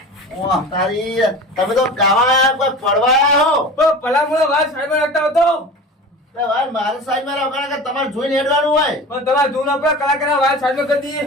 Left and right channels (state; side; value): normal; both; correlation 0.35